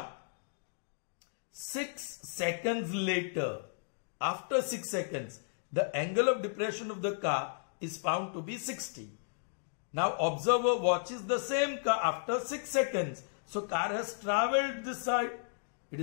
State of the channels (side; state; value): right; silent; digital silence